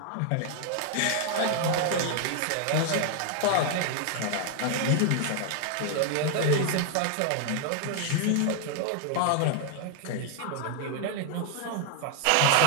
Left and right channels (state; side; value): different; both; correlation 0.00